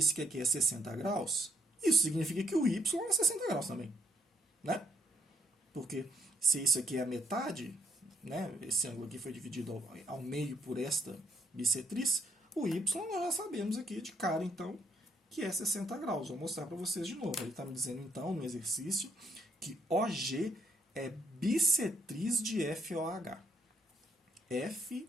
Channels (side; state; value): both; normal; correlation 0.71